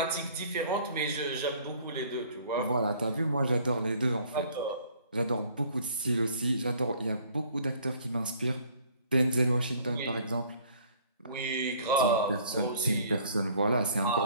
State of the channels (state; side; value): inverted; both; correlation -0.56